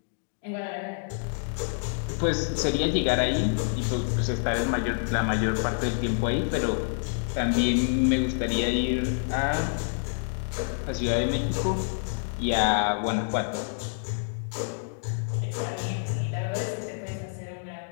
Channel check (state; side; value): silent; right; digital silence